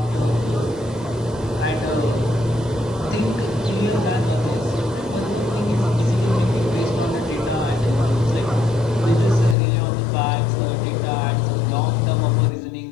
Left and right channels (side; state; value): right; drops out; at 9.6 s